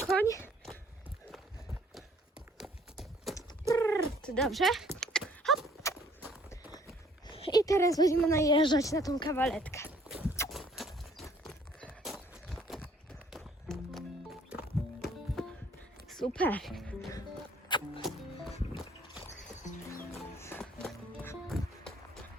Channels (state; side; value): normal; both; correlation 0.60